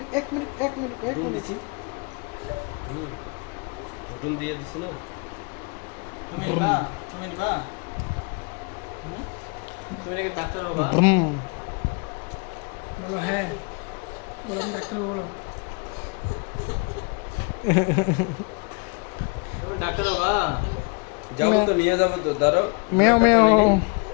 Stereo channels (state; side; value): quieter; right; 32.7 dB